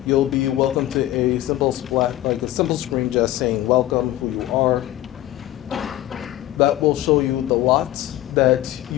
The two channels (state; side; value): quieter; right; 14.7 dB